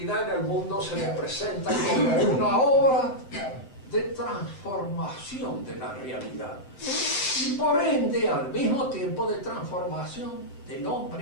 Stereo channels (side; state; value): right; late; 7.8 ms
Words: en el mundo se le presenta como una obra de transformación de la realidad y por ende al mismo tiempo de transformación del